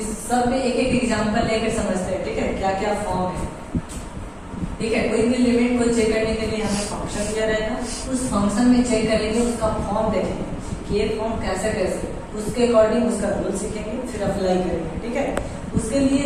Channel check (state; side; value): identical; both; correlation 1.00